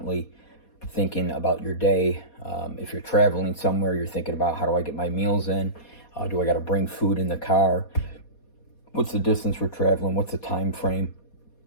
thinking about your day. If you're traveling somewhere, you're thinking about, how do I get my meals in? Do I got to bring food in the car? What's the distance we're traveling? What's the time frame?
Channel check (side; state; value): right; late; 4.2 ms